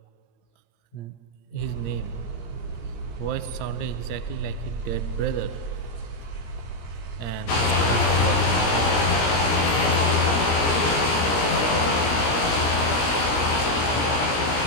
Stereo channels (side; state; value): right; late; 18 ms